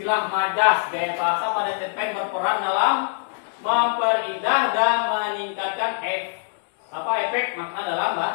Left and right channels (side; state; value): right; silent; digital silence